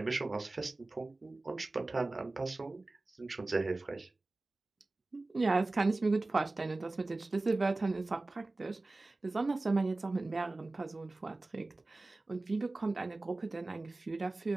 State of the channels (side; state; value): left; quieter; 3.1 dB